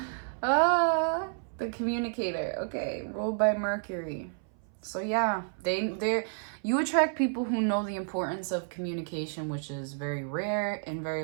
The communicator. Okay, ruled by Mercury. So yeah, you attract people who know the importance of communication, which is very rare and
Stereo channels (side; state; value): left; silent; 57 dB below the other